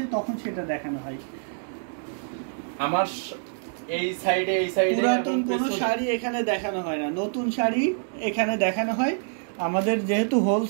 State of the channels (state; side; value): silent; left; digital silence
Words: তখন সেটা দেখানো হয়। আমার এই সাইডে পুরাতন কোনো শাড়ি এখানে দেখানো হয় না, নতুন শাড়ি এখানে দেখানো হয়। আমাদের যেহেতু